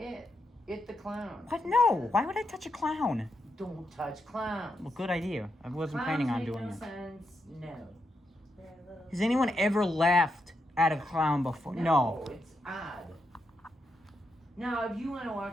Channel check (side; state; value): both; normal; correlation 0.83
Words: the clown. What? No. Why would I touch a clown? Don't touch clowns. Well, good idea. I wasn't Clowns planning on make doing no it. sense. No. Has anyone ever laughed at a clown before? No. It's odd. Now, if you want to